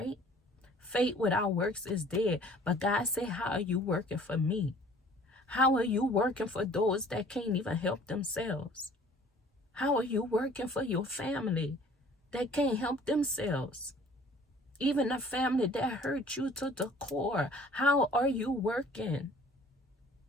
Faith without works is dead. But God said, how are you working for me? How are you working for those that can't even help themselves? How are you working for your family that can't help themselves? Even a family that hurt you to the core. How are you working?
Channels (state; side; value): normal; both; correlation 0.52